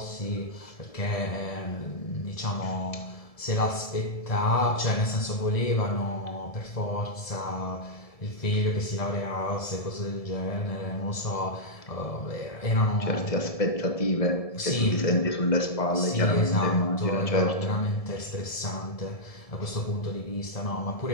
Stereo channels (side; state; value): right; late; 1.7 ms